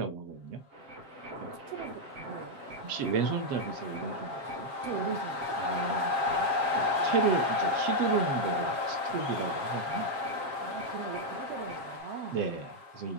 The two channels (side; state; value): left; late; 7.3 ms